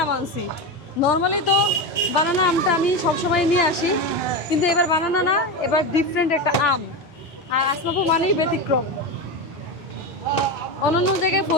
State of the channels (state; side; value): normal; both; correlation 0.18